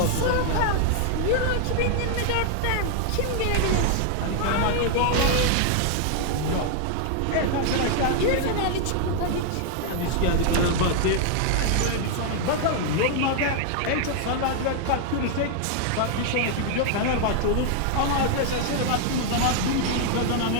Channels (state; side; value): different; both; correlation 0.00